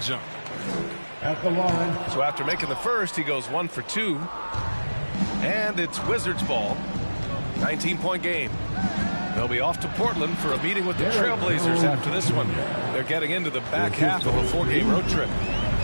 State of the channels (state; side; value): inverted; both; correlation -1.00